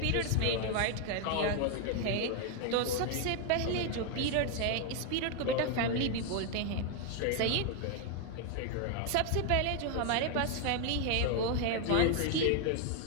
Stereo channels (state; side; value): different; both; correlation 0.01